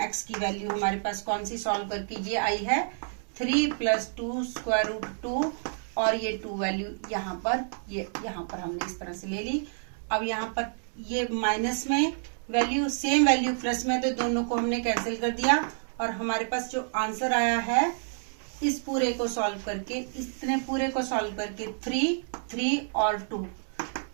x की वैल्यू हमारे पास कौन सी सॉल्व करके ये आई है 3 प्लस 2 स्क्वायर रूट 2 और ये 2 वैल्यू यहाँ पर हमने इस तरह से ले ली। अब यहाँ पर ये माइनस में वैल्यू सेम वैल्यू प्लस में, तो दोनों को हमने कैंसिल कर दिया और हमारे पास जो आंसर आया है इस पूरे को सॉल्व करके, इतने पूरे को सॉल्व करके 3 और 2,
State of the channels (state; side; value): silent; left; 59 dB below the other